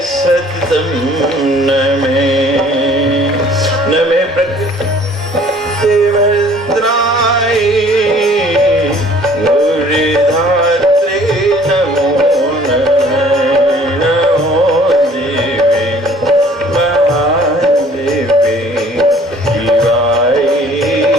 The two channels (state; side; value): normal; both; correlation 0.54